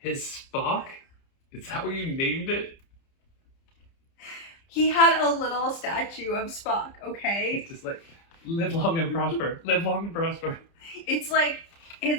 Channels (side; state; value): right; late; 30 ms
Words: Spock? Is that what you named it? He had a little statue of Spock, okay? It's just like, live long and prosper. Live long and prosper. It's like